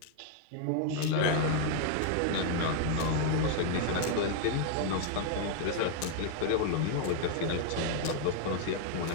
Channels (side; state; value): both; different; correlation 0.00